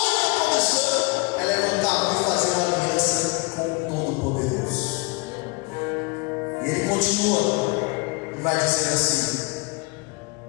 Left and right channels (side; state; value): right; quieter; 27.2 dB